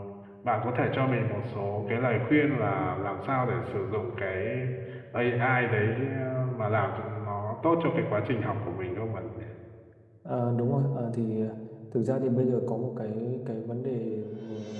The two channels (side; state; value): both; identical; correlation 1.00